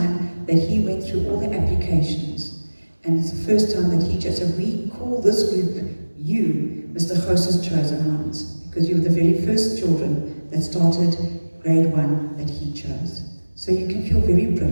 that he went through all the applications. And it's the first time that he chose, so we call this group you, Mr. Gouws' chosen ones, because you were the very first children that started grade 1 that he chose. So you can feel very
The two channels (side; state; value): both; inverted; correlation -1.00